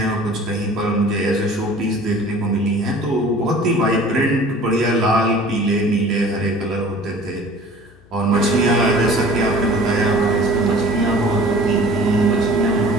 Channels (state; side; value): noise; left; hum, 28 dB below the sound